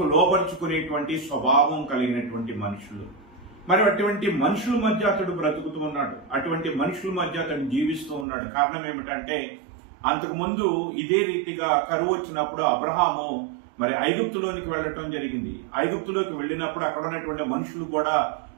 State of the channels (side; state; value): left; drops out; at 8.2 s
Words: లోపరుచుకునేటువంటి స్వభావం కలిగినటువంటి మనుషులు. మరి అటువంటి మనుషుల మధ్య అతడు బ్రతుకుతూ ఉన్నాడు, అటువంటి మనుషుల మధ్య అతడు జీవిస్తూ ఉన్నాడు. కారణం ఏమిటంటే, అంతకుముందు ఇదే రీతిగా కరువు వచ్చినప్పుడు అబ్రహాము మరి ఐగుప్తులోనికి వెళ్ళటం జరిగింది. ఐగుప్తులోకి వెళ్ళినప్పుడు అక్కడ ఉన్నటువంటి మనుషులు కూడా